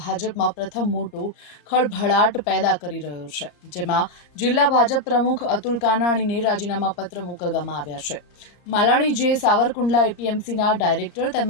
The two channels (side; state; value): right; late; 34 ms